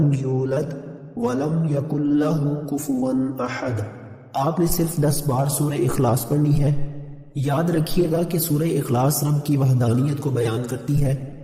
یولد ولم یکن لہ کفوا احد۔ آپ نے صرف 10 بار سورہ اخلاص پڑھنی ہے۔ یاد رکھیے گا کہ سورہ اخلاص رب کی وحدانیت کو بیان کرتی ہے،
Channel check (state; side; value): identical; both; correlation 1.00